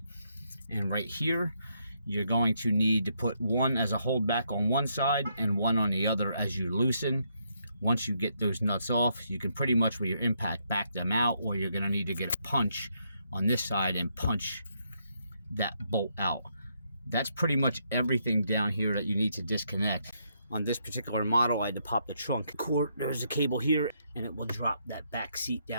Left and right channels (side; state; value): both; inverted; correlation -0.75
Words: and right here you're going to need to put one as a holdback on one side and one on the other as you loosen. Once you get those nuts off, you can pretty much with your impact back them out, or you're going to need to get a punch on this side and punch that bolt out. That's pretty much everything down here that you need to disconnect. On this particular model, I had to pop the trunk cord. There's a cable here, and it will drop that back seat